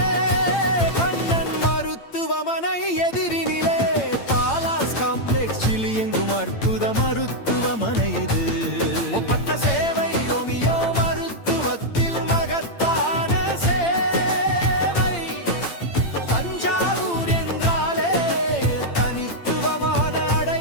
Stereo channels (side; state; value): right; late; 8.8 ms